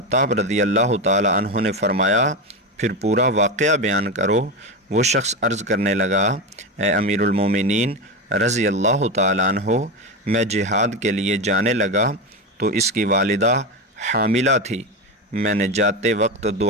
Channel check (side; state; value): both; normal; correlation 0.17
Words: رضی اللہ تعالی عنہ نے فرمایا، پھر پورا واقعہ بیان کرو۔ وہ شخص عرض کرنے لگا، اے امیر المومنین رضی اللہ تعالی عنہ، میں جہاد کے لیے جانے لگا تو اس کی والدہ حاملہ تھی۔ میں نے جاتے وقت